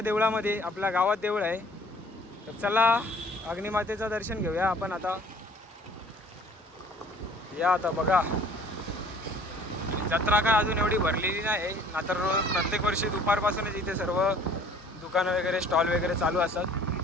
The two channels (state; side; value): normal; both; correlation 0.53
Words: आपल्या गावात देऊळ आहे. तर चला अग्निमातेचं दर्शन घेऊया आपण आता. या आता बघा, जत्रा काय अजून एवढी भरलेली नाही ना, तर प्रत्येक वर्षी दुपारपासूनच इथे सर्व दुकानं वगैरे स्टॉल वगैरे चालू